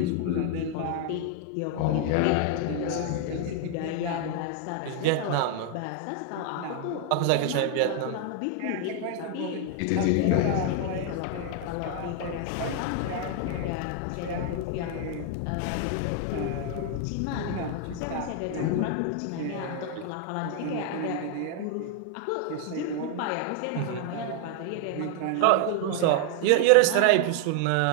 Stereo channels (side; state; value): both; different; correlation 0.00